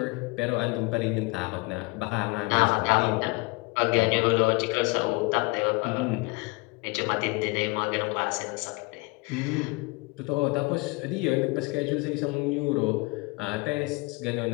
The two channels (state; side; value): quieter; right; 26.5 dB